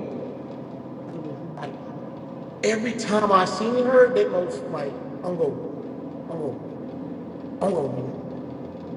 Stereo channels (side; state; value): both; identical; correlation 1.00